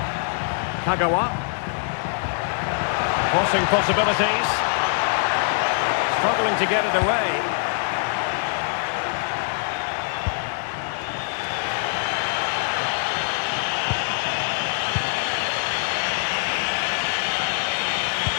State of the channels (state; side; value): silent; right; digital silence